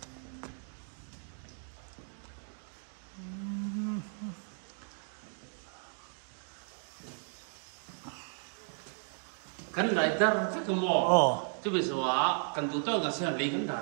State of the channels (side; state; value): left; silent; 55 dB below the other